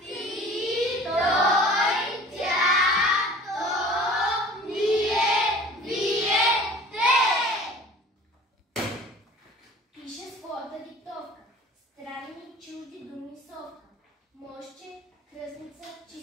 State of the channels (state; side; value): normal; both; correlation 0.45